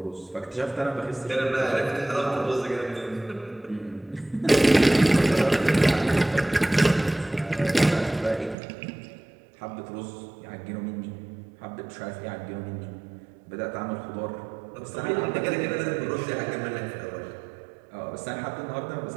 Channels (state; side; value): drops out; left; at 8.6 s